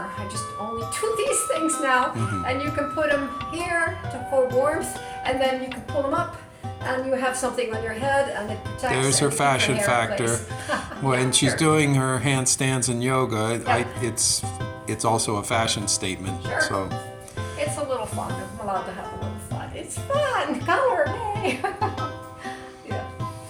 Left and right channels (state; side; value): identical; both; correlation 1.00